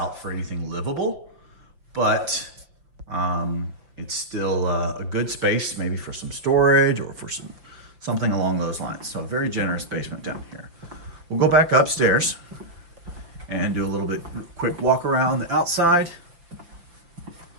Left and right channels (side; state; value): left; late; 5.8 ms